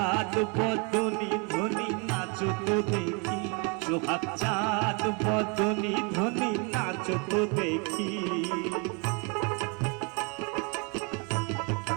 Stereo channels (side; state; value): left; quieter; 33.9 dB